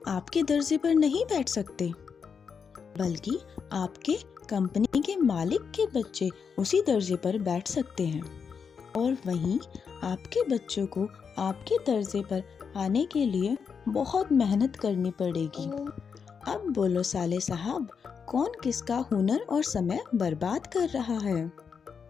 आपके दर्जे पर नहीं बैठ सकते, बल्कि आपके कंपनी के मालिक के बच्चे उसी दर्जे पर बैठ सकते हैं और वहीं आपके बच्चों को आपके दर्जे पर आने के लिए बहुत मेहनत करनी पड़ेगी। अब बोलो साले साहब, कौन किसका हुनर और समय बर्बाद कर रहा है?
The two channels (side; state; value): right; quieter; 6.2 dB